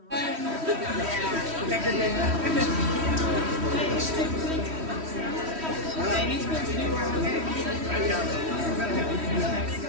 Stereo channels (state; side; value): late; left; 3.1 ms